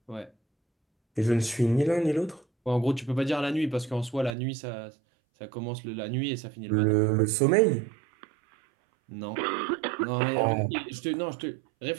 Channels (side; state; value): left; drops out; at 4.3 s